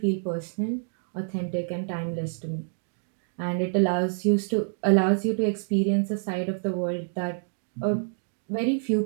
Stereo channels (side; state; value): left; silent; digital silence